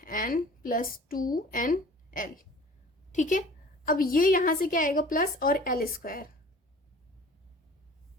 plus 2NL, ठीक है। अब ये यहां से क्या आएगा, प्लस और एल स्क्वायर,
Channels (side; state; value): both; normal; correlation 0.46